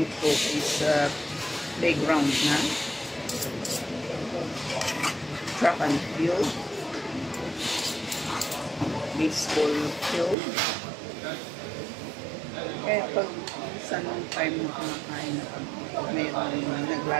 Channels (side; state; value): left; drops out; at 10.4 s